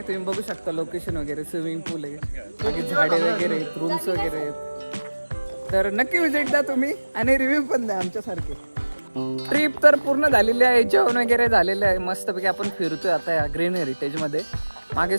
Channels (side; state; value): both; inverted; correlation -1.00